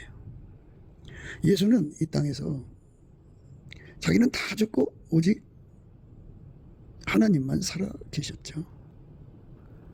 예수는 이 땅에서 자기는 다 죽고 오직 하나님만 살아 계셨죠.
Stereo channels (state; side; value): identical; both; correlation 1.00